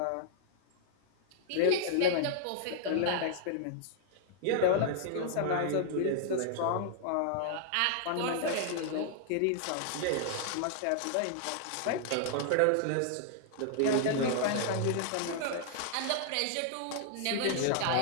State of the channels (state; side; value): different; both; correlation -0.01